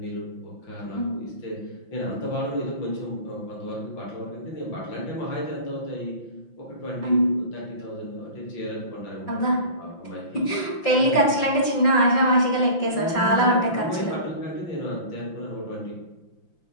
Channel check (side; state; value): right; late; 5.9 ms